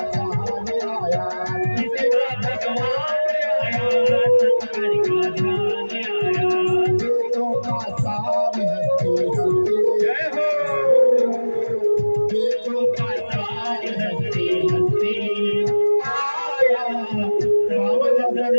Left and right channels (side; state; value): both; inverted; correlation -1.00